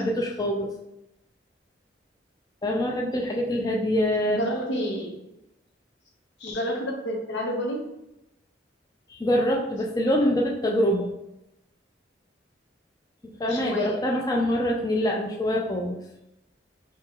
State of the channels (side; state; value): both; normal; correlation 0.58